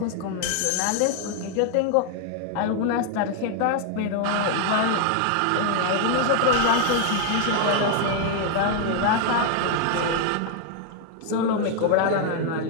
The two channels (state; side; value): different; both; correlation 0.00